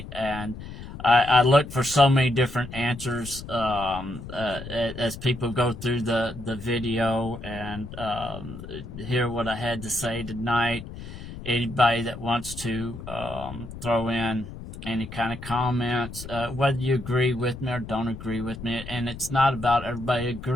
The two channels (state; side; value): noise; left; rumble, 12 dB below the sound